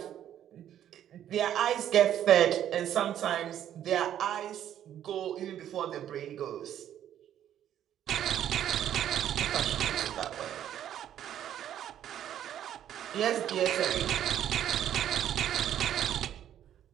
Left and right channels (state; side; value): quieter; left; 10.7 dB